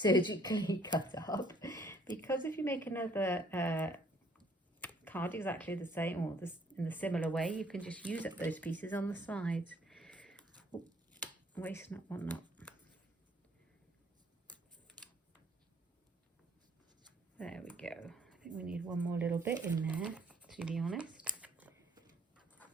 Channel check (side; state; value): both; normal; correlation 0.62